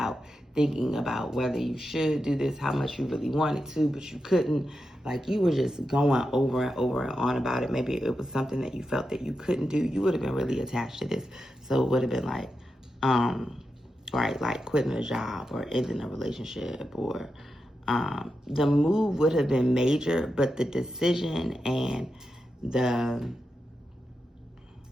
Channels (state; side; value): normal; both; correlation 0.88